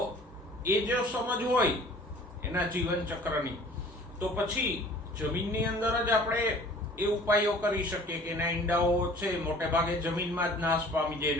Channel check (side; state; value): both; normal; correlation 0.49